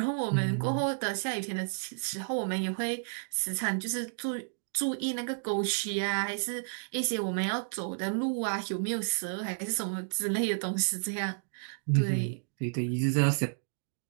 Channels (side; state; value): left; silent; digital silence